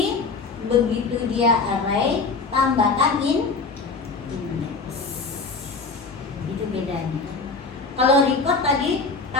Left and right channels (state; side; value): quieter; right; 4.3 dB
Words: begitu dia array, tambahkan index. Itu bedanya. Kalau record tadi